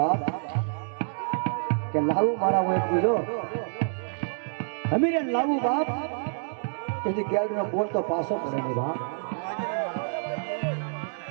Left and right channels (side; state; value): left; silent; digital silence